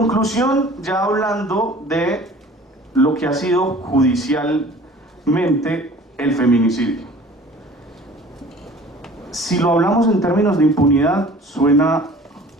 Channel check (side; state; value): both; normal; correlation 0.47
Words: ya hablando de lo que ha sido judicialmente el feminicidio. Si lo hablamos en términos de impunidad, suena